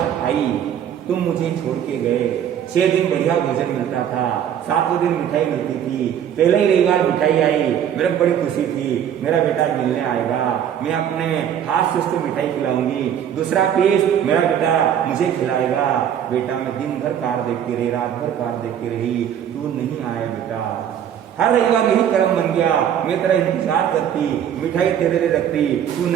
आई, तुम मुझे छोड़ के गए। 6 दिन बढ़िया भोजन मिलता था, 7वें दिन मिठाई मिलती थी। पहले ही रविवार मिठाई आई, मेरे को बड़ी खुशी थी, मेरा बेटा मिलने आएगा, मैं अपने हाथ से उसको मिठाई खिलाऊंगी, दूसरा पीस मेरा बेटा मुझे खिलाएगा। बेटा मैं दिन भर कार देखती रही, रात भर कार देखती रही, तू नहीं आया बेटा। हर रविवार यही कर्म बन गया, मैं तेरा इंतजार करती, मिठाई तेरे लिए रखती, तू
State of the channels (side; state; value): left; quieter; 9.5 dB